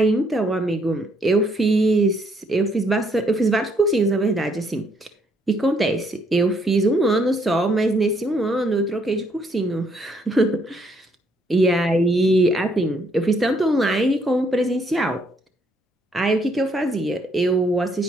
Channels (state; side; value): normal; both; correlation 0.70